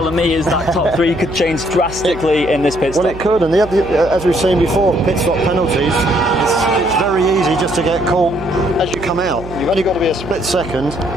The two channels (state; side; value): noise; right; hum, 14 dB below the sound